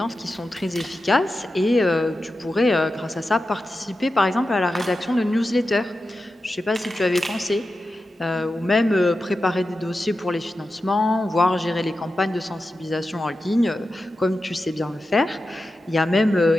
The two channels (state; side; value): normal; both; correlation 0.91